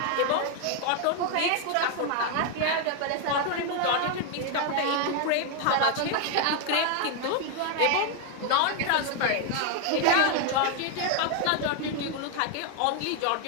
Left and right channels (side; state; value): both; different; correlation 0.01